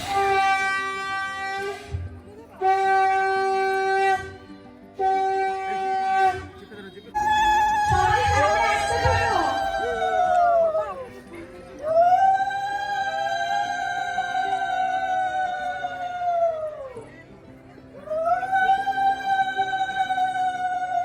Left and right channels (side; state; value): both; identical; correlation 1.00